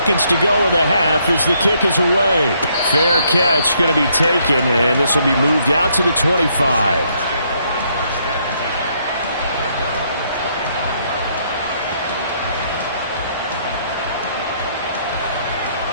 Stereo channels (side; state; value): both; inverted; correlation -0.71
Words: to go in the half as the kick is away. Fair catch going to be taken, and this will be moved out to the 25.